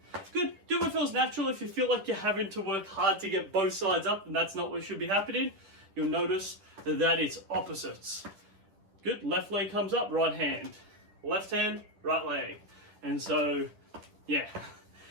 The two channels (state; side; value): late; left; 10 ms